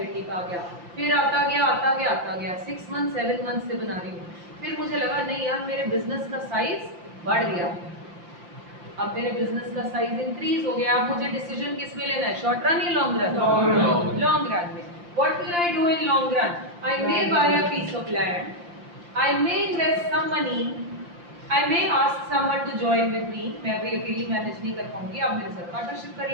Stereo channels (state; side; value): late; left; 5.8 ms